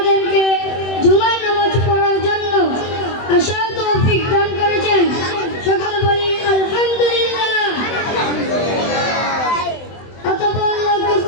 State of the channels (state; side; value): late; right; 23 ms